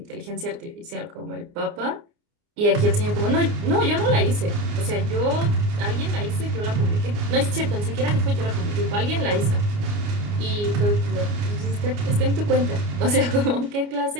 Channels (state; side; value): late; left; 29 ms